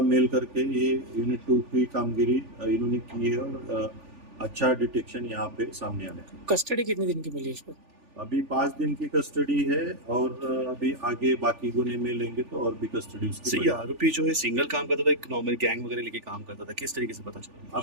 मेल करके ये यूनिट 2 की कामगिरी इन्होंने की है और अच्छा डिटेक्शन यहाँ पे सामने आया है। कस्टडी कितने दिन की मिली है इसको? अभी 5 दिन की कस्टडी है और अभी आगे बाकी गुने में लेंगे तो और भी कस्टडी उसकी सही, बढ़ेगी। आरोपी जो है सिंगल काम करता था, एक नॉर्मल गैंग वगैरह लेके काम करता था, किस तरीके से पता चला?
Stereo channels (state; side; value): late; left; 3.4 ms